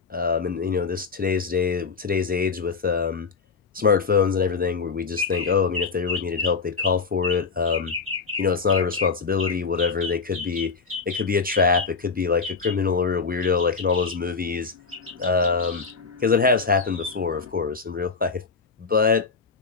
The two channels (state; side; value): quieter; right; 4.9 dB